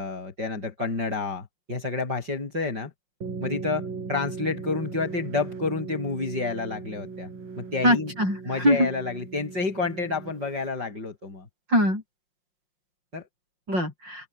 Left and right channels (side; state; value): left; late; 5.6 ms